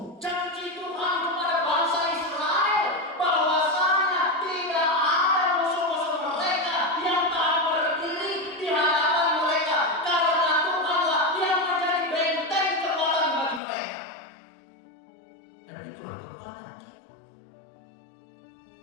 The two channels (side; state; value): right; drops out; at 13.6 s